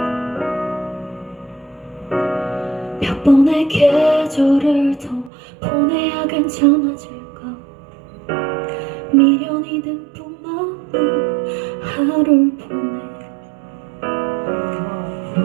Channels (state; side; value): drops out; left; at 5.3 s